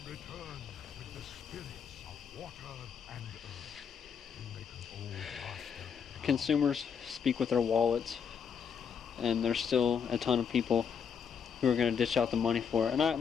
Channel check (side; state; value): right; quieter; 7.0 dB